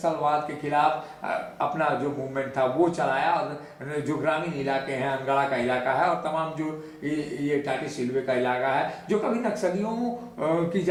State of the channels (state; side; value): identical; both; correlation 1.00